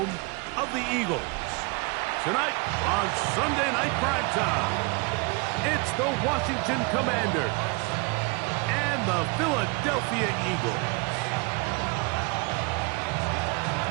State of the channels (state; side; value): quieter; left; 29.4 dB